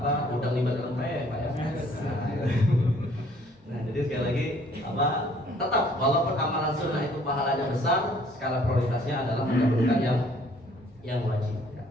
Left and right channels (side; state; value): both; normal; correlation 0.59